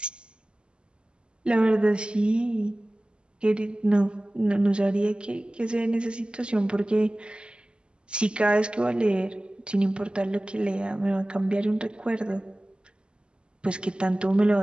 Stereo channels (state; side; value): late; left; 0.052 ms